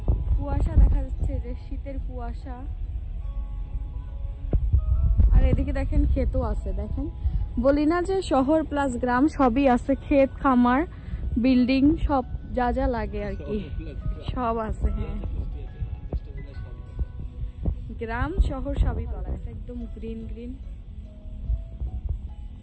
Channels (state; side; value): identical; both; correlation 1.00